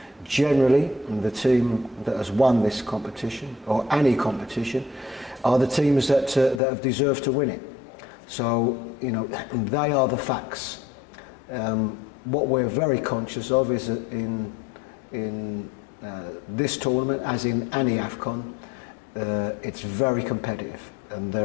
generally the team that has won this competition, or any competition, are the teams that have deserved to win it. So, you know, they are the facts. What we're very conscious of is that in this tournament, as in any AFCON, it's very competitive, and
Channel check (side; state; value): right; drops out; at 6.6 s